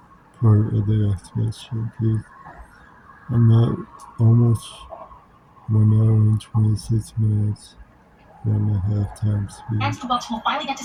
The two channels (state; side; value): identical; both; correlation 1.00